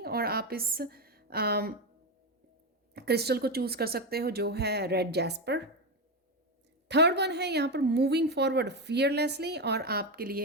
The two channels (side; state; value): both; normal; correlation 0.12